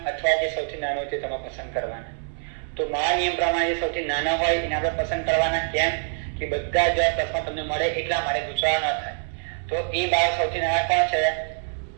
અથવા જે સૌથી નાનો છે તમે પસંદ કરવાના. તો મારા નિયમ પ્રમાણે જે સૌથી નાના હોય એને આપણે પસંદ કરવાના. કેમ કે બધા જ પ્લસમાં તમને મળે એટલા માટે ગુચરાણ ન થાય. તો એ 12 સૌથી નાના કોણ છે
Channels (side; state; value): left; silent; 62 dB below the other